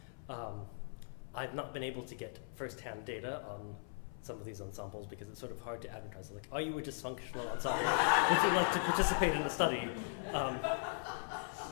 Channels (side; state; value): right; silent; 52 dB below the other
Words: I've not been able to get first-hand data on some of these ensembles because it's sort of hard to advertise. Like, are you a dysfunctional ensemble? Would you like to participate in the study?